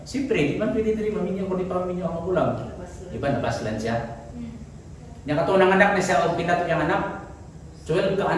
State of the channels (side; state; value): both; identical; correlation 1.00